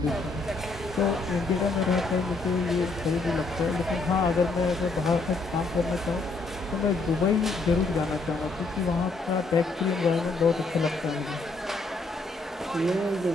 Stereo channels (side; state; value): right; quieter; 3.5 dB